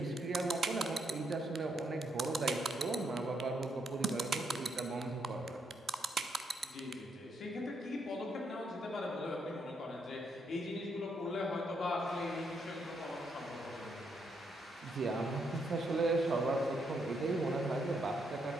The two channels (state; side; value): normal; both; correlation 0.77